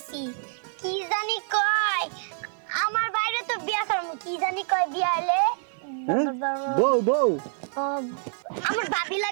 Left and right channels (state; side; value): silent; left; digital silence